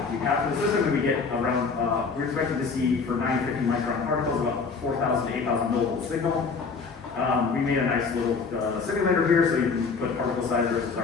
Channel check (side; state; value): right; quieter; 4.9 dB